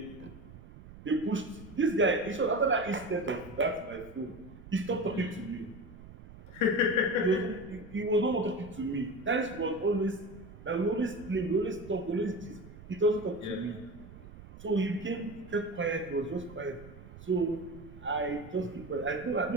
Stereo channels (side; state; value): right; noise; rumble, 17 dB below the sound